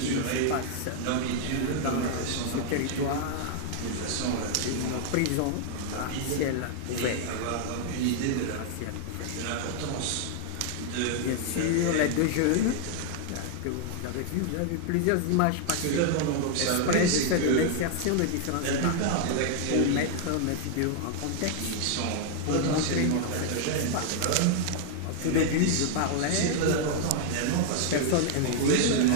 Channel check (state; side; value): different; both; correlation 0.00